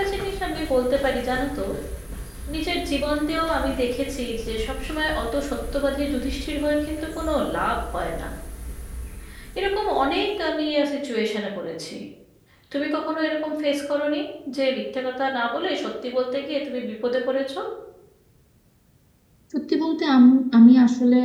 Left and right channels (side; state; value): both; identical; correlation 1.00